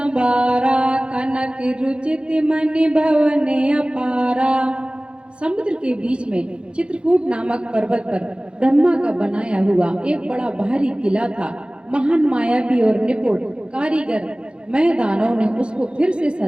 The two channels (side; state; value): left; late; 0.056 ms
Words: कनक रुचित मणि भवन अपारा। समुद्र के बीच में चित्रकूट नामक पर्वत पर ब्रह्मा का बनाया हुआ एक बड़ा भारी किला था। महान मायावी और निपुण कारीगर मैं दानव ने उसको फिर से